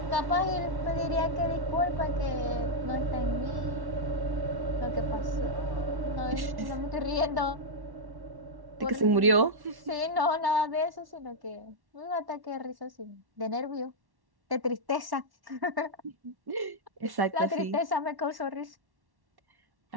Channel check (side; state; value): left; late; 1.1 ms